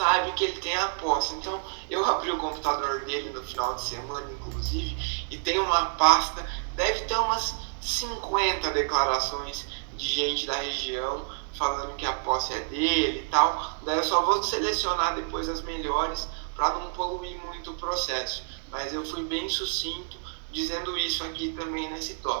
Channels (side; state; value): left; silent; digital silence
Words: que ele tem a posse. Então, eu abri o computador dele no final de semana, inclusive, e tem uma pasta, deve ter umas 50 declarações de gente da região falando que a posse é dele e tal. Daí eu só vou selecionar depois as melhores para não poluir muito o processo. Mas eu fui bem sucinto dizendo isso aqui também nesse